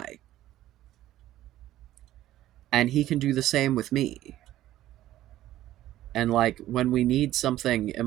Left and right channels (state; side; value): quieter; left; 14.0 dB